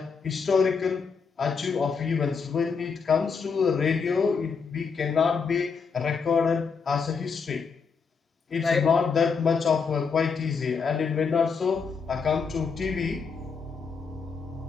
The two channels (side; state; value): right; quieter; 5.4 dB